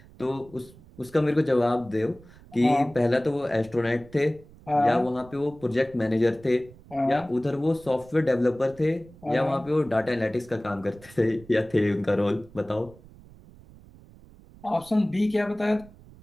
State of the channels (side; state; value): right; noise; rumble, 22 dB below the sound